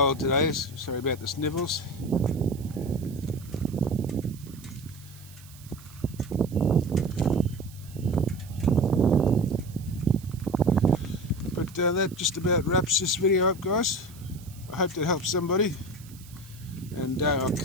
today, sorry about the snivels. that just about wraps this video up, guys. I hope that helps somebody, and I'll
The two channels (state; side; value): noise; right; hiss, 22 dB below the sound